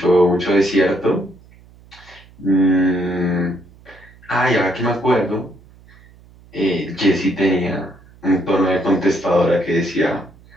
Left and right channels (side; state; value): right; noise; hum, 25 dB below the sound